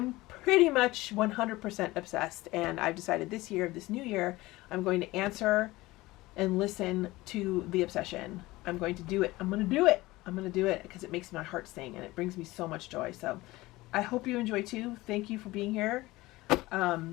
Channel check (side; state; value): right; quieter; 19.6 dB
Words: pretty much 100% obsessed, and I've decided this year, this new year, I'm going to answer and listen to the obsession. I'm going to do it. I'm going to do it. I'm going to do it because it makes my heart sing and it brings me so much joy. So I hope you enjoy too. Thank you for being here.